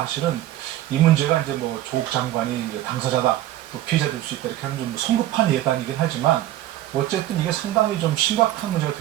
사실은 이 문제가 이제 뭐 조국 장관이 이제 당사자다, 또 피해자 될 수 있다 이렇게 하는 좀 성급한 예단이긴 하지만 어쨌든 이게 상당히 좀 심각한 문제가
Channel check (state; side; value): quieter; left; 14.0 dB